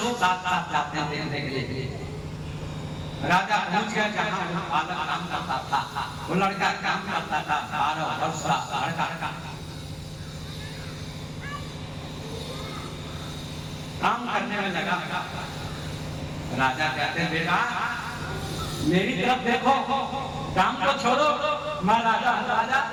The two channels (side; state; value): both; identical; correlation 1.00